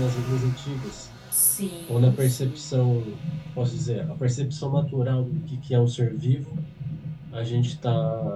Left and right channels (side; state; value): both; identical; correlation 1.00